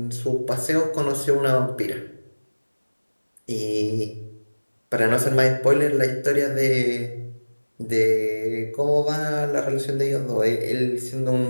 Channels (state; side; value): inverted; both; correlation -1.00